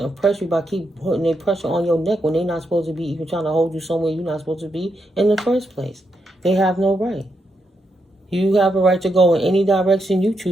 impress you by keep putting their pressure on your neck when they're not supposed to be even trying to hold you somewhere you're not supposed to be in the first place. They have no right. You have a right to go in any direction you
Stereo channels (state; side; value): normal; both; correlation 0.82